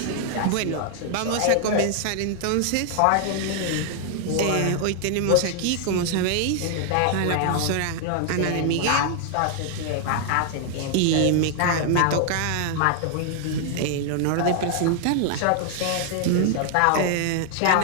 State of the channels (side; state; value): both; different; correlation 0.00